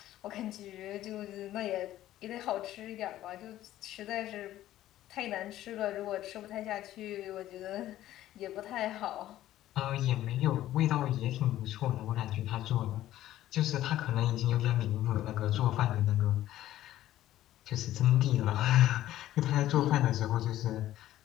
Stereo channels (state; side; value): quieter; right; 13.8 dB